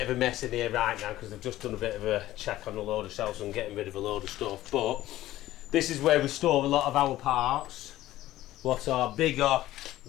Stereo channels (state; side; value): quieter; right; 15.1 dB